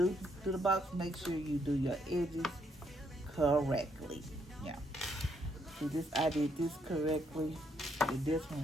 the box, make sure you do your edges correctly. Yeah. See, this, I did this correctly with this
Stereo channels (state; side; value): normal; both; correlation 0.74